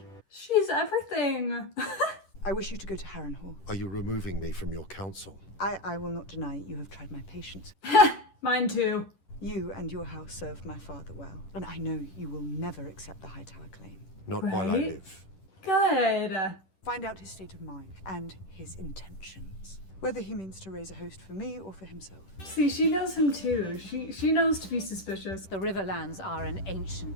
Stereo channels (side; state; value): right; late; 10 ms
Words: She's everything. I wish you to go to Harrenhal. Are you removing me from your council? I will not deny you have tried my patience. Mine too. You and your house served my father well, and I know you will never accept the Hightower claim. Not while I live. Good. Find out his state of mind and his intentions. Whether he means to raise a host for me or for himself. See, she knows him too. She knows to be suspicious. The Riverlands are an